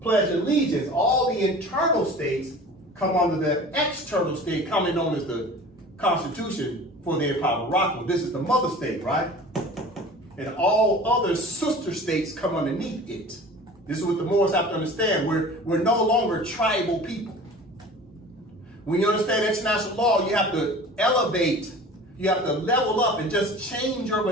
pledge allegiance. All the internal states come under the external state, commonly known as the Constitution for the Empire of Morocco. This is the mother state, right? And all other sister states come underneath it. This is what the Moors have to understand. We're no longer tribal people. When you understand international law, you have to elevate, you have to level up and just change your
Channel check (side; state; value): both; normal; correlation 0.41